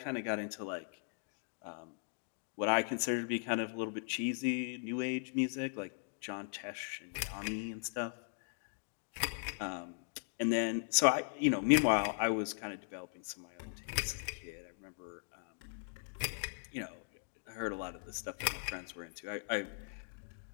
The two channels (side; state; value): right; silent; digital silence